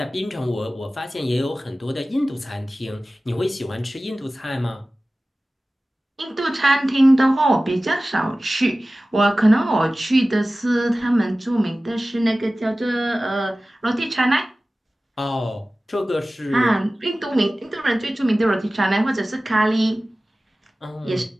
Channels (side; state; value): both; normal; correlation 0.97